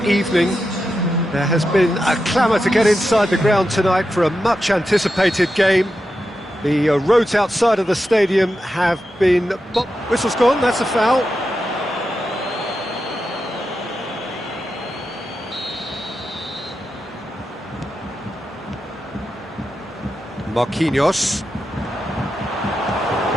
evening. There has been a clamour to get inside the ground tonight for a much anticipated game. The roads outside of the stadium have been... Whistle's gone, that's a foul. Marquinhos.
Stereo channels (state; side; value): normal; both; correlation 0.88